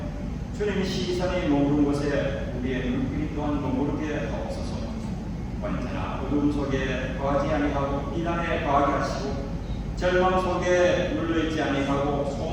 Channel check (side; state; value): both; identical; correlation 1.00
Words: 주님 시선이 머무른 곳에 우리의 눈길이 또한 머무르게 하옵소서. 언제나 어둠 속에 거하지 아니하고 비난에 거하게 하시고 절망 속에 눌러있지 아니하고